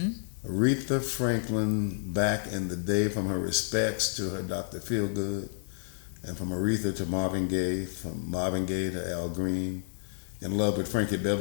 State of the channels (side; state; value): right; silent; digital silence